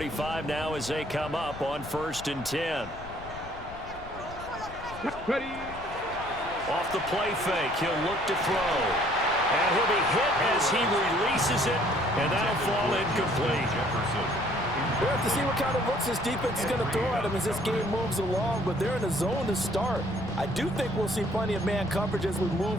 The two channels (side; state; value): left; noise; rumble, 15 dB below the sound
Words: now as they come up on 1st and 10. Ready. Off the play fake, he'll look to throw. And he'll be hit as he releases it, and that'll fall incomplete. We'll have to see what kind of looks this defense is going to throw at him as this game moves along, but they're in a zone to start. I do think we'll see plenty of man coverage as we